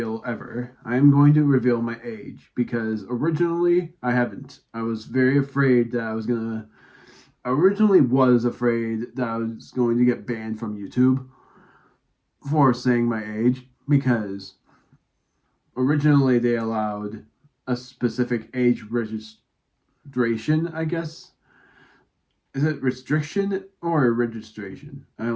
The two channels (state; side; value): identical; both; correlation 1.00